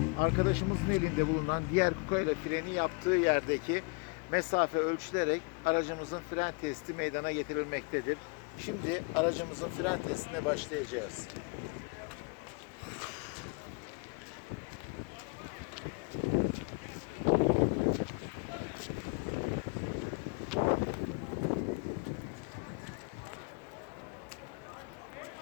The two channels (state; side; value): quieter; right; 31.4 dB